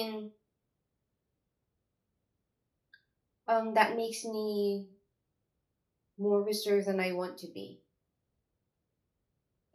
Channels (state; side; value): identical; both; correlation 1.00